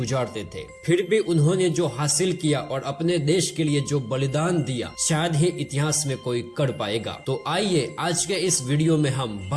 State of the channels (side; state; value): both; identical; correlation 1.00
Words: थे। फिर भी उन्होंने जो हासिल किया और अपने देश के लिए जो बलिदान दिया शायद ही इतिहास में कोई कर पाएगा। तो आइए आज के इस वीडियो में हम